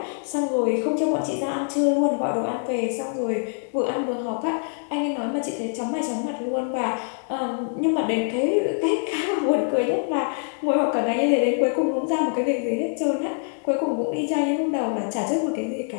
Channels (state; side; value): silent; right; 62 dB below the other